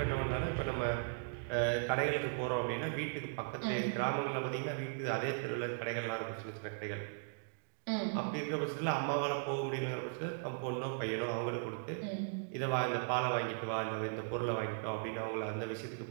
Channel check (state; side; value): silent; left; digital silence